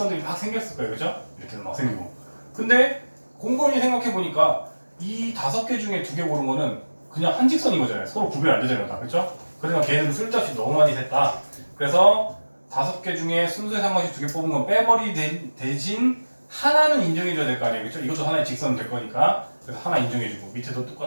막 생겼을 거예요. 그죠? 이렇게 막 생기고. 근데 곰곰이 생각해보니까 이 5개 중에 2개 고른 거는 그냥 한 직선인 거잖아요. 서로 구별 안 되잖아요. 다. 그죠? 그러니까 걔는 쓸데없이 너무 많이 샜다. 그래서 5개 중에 순서에 상관없이 2개 뽑은 건 빼버리 대신 하나는 인정해줘야 될 거 아니에요. 그렇죠? 이것도 하나의 직선 될 거니까. 그래서 하나 인정해주고 밑에도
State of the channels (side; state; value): both; inverted; correlation -1.00